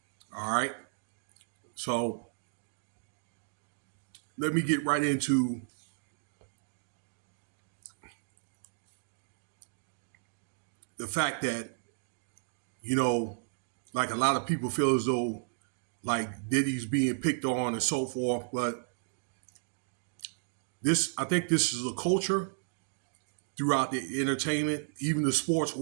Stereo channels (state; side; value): silent; left; digital silence